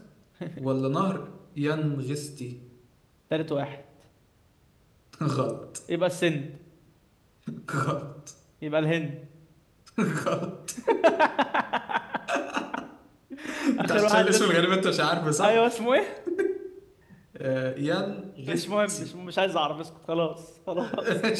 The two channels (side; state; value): both; identical; correlation 1.00